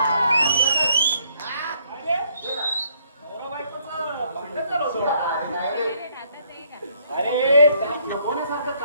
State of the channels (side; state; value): both; inverted; correlation -0.66